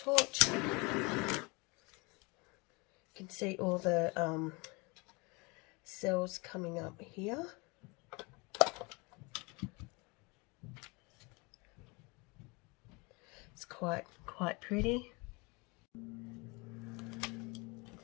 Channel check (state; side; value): quieter; right; 27.9 dB